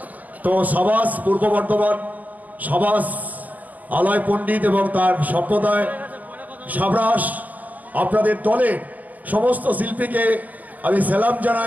তো সাবাস পূর্ব বর্ধমান, সাবাস আলয় পণ্ডিত এবং তার সম্প্রদায়, সাবরাস আপনাদের দলের সমস্ত শিল্পীকে আমি সালাম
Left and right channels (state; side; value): late; left; 0.077 ms